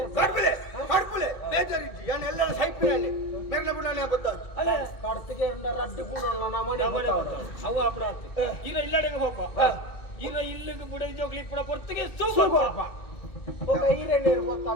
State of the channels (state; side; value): late; right; 2.1 ms